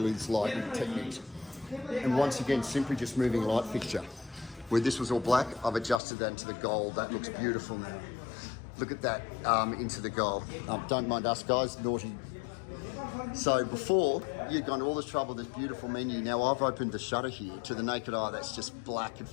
this lighting techniques. And once again, simply just moving light fixture. Where this was all black, I've adjusted that into the gold. That looks beautiful now. Look at that into the gold. Don't mind us guys, naughty. So before, you'd gone to all this trouble, this beautiful menu. Now I've opened the shutter here. To the naked eye, that's just black and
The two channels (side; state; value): right; drops out; at 6.0 s